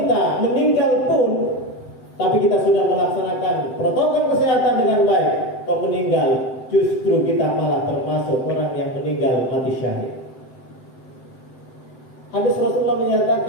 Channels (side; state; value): right; late; 7.8 ms